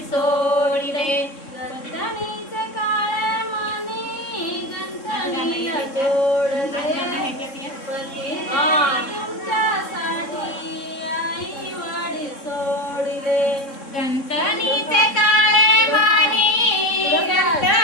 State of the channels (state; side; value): late; right; 3.6 ms